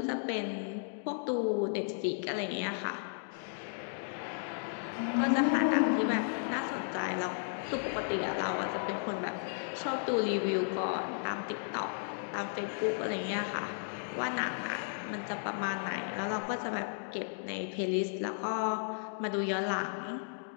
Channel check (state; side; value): silent; right; digital silence